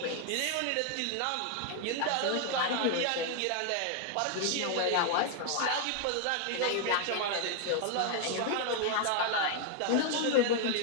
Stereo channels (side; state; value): both; different; correlation 0.00